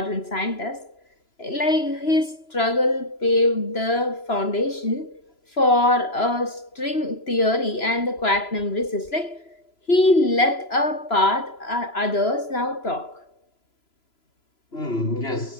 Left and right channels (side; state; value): right; late; 3.0 ms